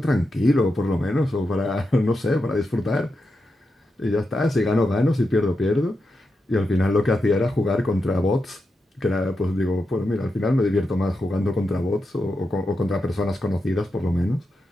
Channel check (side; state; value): both; normal; correlation 0.87